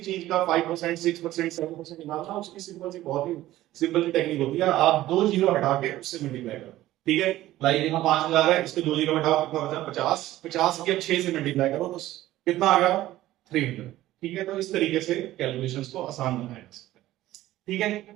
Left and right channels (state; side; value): quieter; left; 15.2 dB